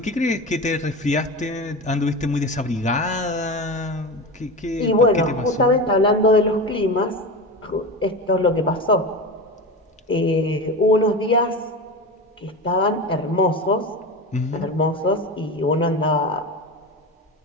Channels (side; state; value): both; normal; correlation 0.25